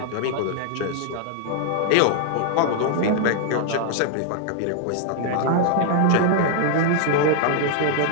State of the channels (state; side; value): different; both; correlation 0.00